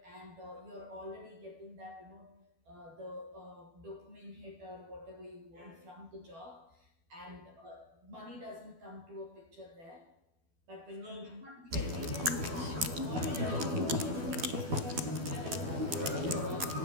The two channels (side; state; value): left; late; 12 ms